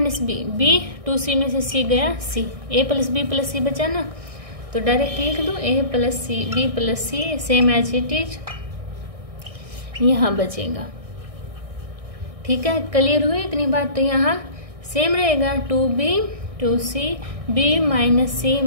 बी, b 2c में से c गया c, a plus B plus C बचा ना, तो डायरेक्ट लिख दो a plus C B plus C same as it is यहाँ बचेगा। ठीक है, क्लियर हुई इतनी बात? तो यहाँ सेम रहेगा 2b 2c b minus C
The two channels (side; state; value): left; late; 1.6 ms